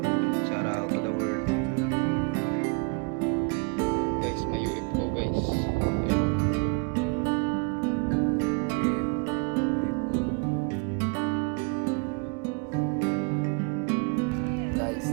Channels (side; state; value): left; quieter; 33.1 dB